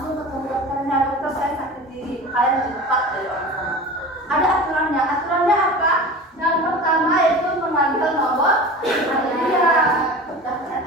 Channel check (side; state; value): both; normal; correlation 0.34